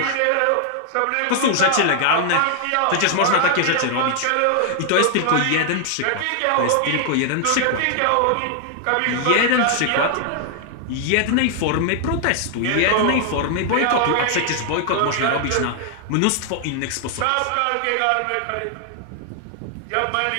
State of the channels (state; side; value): different; both; correlation 0.00